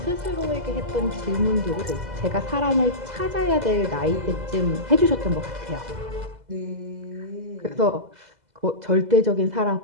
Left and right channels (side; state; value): left; late; 2.0 ms